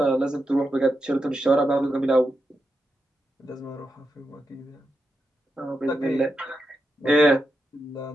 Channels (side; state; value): both; normal; correlation 0.86